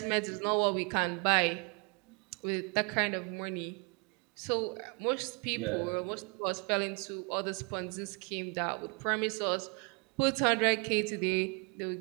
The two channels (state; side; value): quieter; left; 34.7 dB